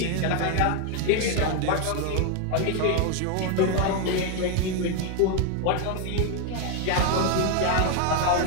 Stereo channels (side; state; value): both; different; correlation 0.01